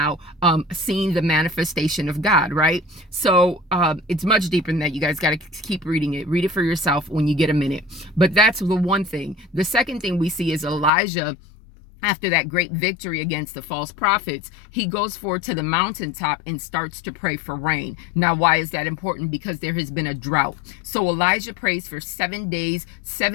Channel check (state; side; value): drops out; right; at 10.9 s